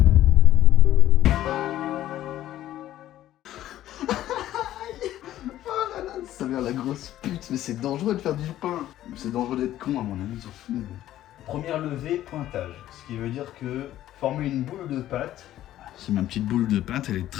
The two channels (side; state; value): right; quieter; 13.3 dB